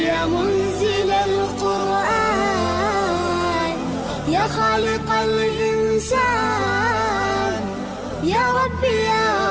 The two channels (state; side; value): identical; both; correlation 1.00